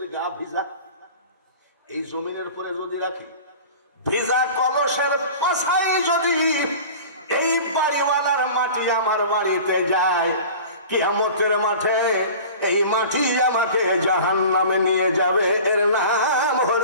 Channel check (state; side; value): inverted; both; correlation -0.39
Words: গা ভিজা। এই জমিনের পরে যদি রাখি, ভিজা কলসের পাশায় যদি এই বাড়িওয়ালার মাটি আমার বাড়িতে যায়, কিয়ামতের মাঠে এই মাটি আমাকে জাহান্নামে নিয়ে যাবে। এর নাম